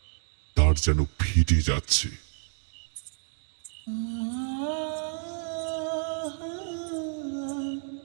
তার যেন ফেটে যাচ্ছে।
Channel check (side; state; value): left; silent; digital silence